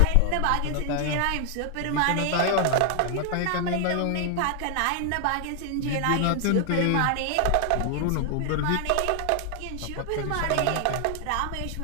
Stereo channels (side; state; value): both; different; correlation 0.00